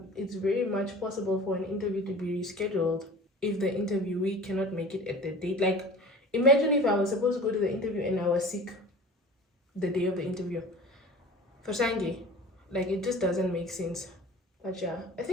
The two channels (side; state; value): both; normal; correlation 0.40